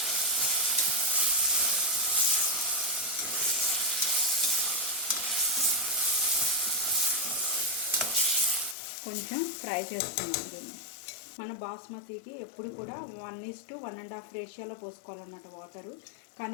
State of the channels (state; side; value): drops out; right; at 8.8 s